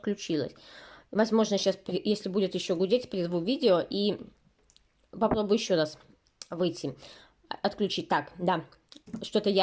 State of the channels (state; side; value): identical; both; correlation 1.00